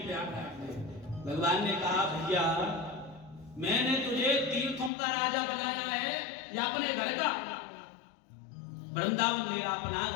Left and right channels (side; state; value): right; drops out; at 4.9 s